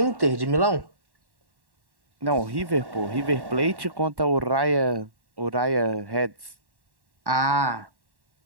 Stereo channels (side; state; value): left; late; 1.1 ms